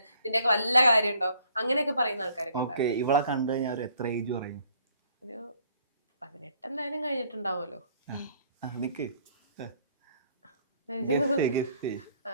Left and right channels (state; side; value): inverted; both; correlation -0.62